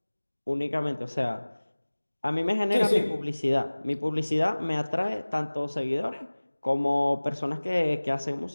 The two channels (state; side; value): inverted; both; correlation -1.00